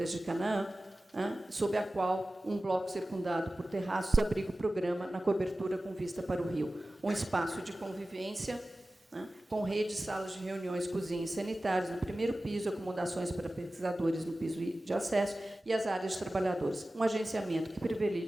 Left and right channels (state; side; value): normal; both; correlation 0.96